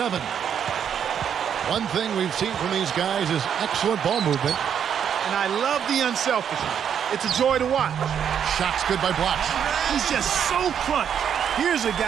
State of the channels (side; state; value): left; quieter; 8.4 dB